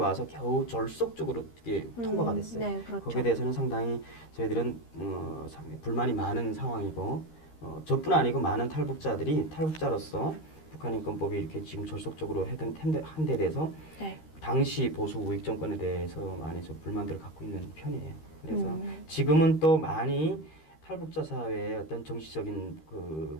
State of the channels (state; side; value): late; right; 13 ms